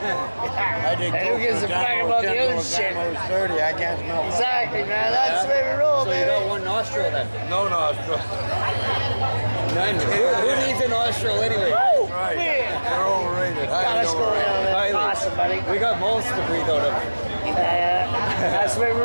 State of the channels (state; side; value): inverted; both; correlation -1.00